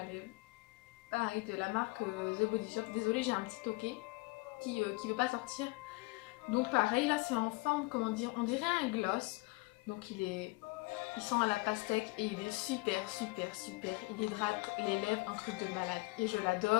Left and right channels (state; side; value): quieter; right; 24.4 dB